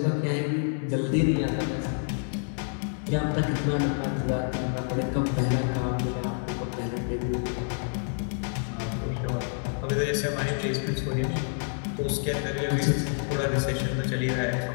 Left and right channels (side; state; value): right; silent; 59 dB below the other